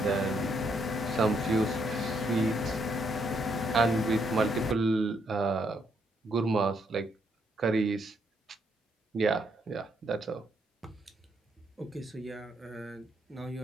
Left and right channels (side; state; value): both; normal; correlation 0.75